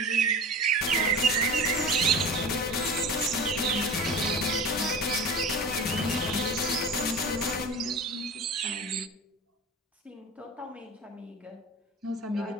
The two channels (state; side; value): normal; both; correlation 0.34